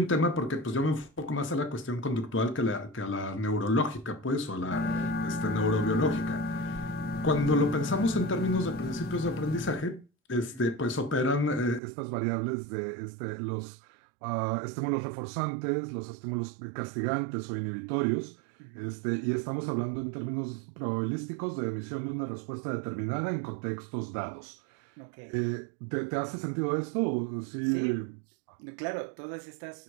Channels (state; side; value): drops out; left; at 11.8 s